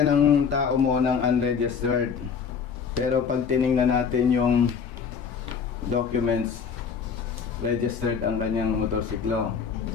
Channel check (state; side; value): quieter; right; 6.3 dB